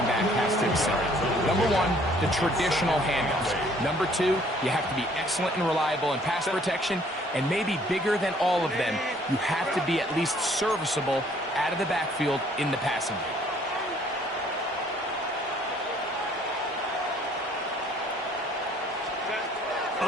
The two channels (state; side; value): normal; both; correlation 0.60